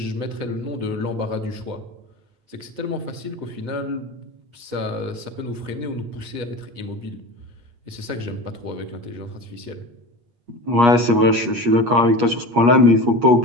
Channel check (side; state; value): left; late; 8.4 ms